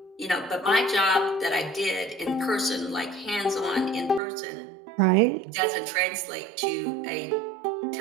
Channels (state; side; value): drops out; left; at 4.2 s